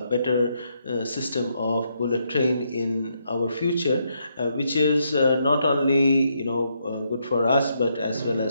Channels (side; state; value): both; inverted; correlation -0.77